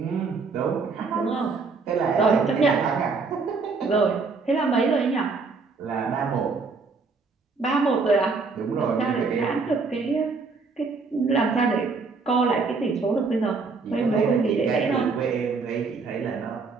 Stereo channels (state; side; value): quieter; left; 4.4 dB